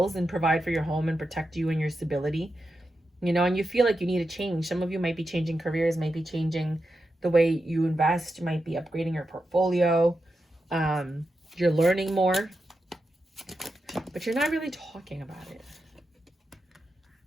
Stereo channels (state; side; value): normal; both; correlation 0.88